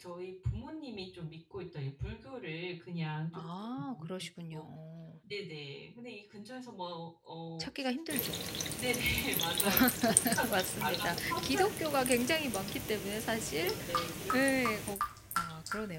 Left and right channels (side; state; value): both; identical; correlation 1.00